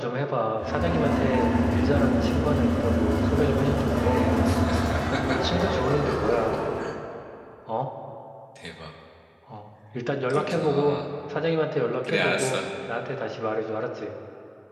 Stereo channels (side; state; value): both; identical; correlation 1.00